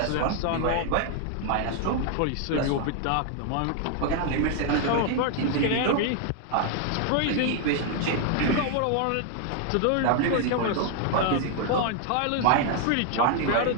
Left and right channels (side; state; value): both; different; correlation 0.00